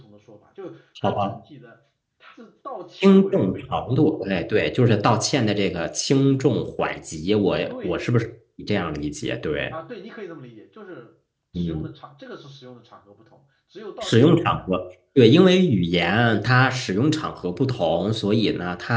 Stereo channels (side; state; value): both; identical; correlation 1.00